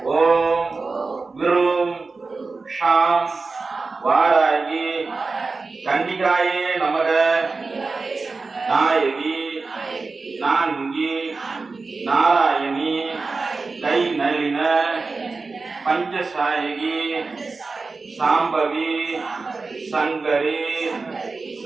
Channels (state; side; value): quieter; left; 4.0 dB